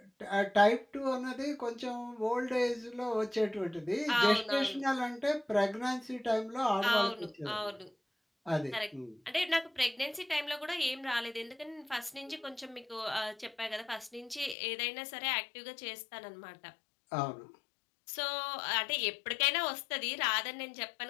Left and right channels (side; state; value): right; drops out; at 14.6 s